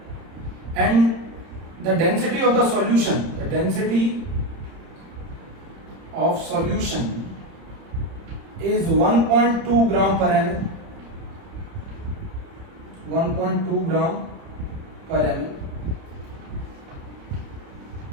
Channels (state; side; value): late; left; 31 ms